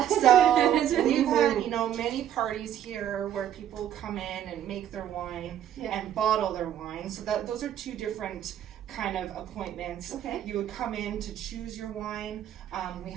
So we've had many parties here where people come in and make their wine and bottle their wine. So those are two different kind of appointments. Okay. You would come in to choose your wine. We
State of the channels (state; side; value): quieter; left; 10.7 dB